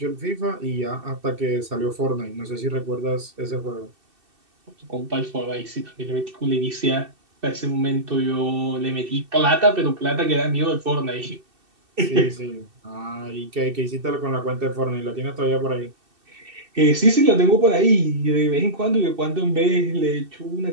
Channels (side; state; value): left; late; 2.7 ms